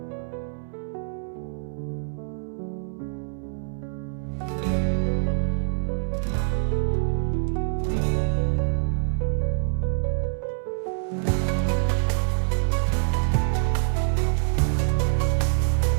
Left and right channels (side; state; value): left; silent; 61 dB below the other